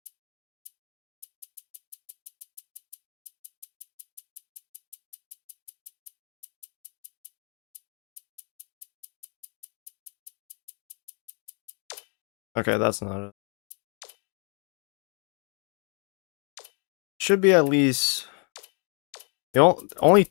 Okay, that's not it. Should be at least only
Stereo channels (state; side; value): quieter; right; 39.4 dB